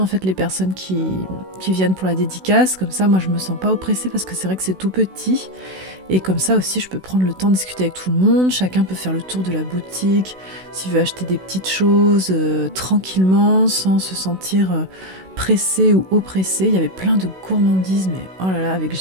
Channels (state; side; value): late; left; 16 ms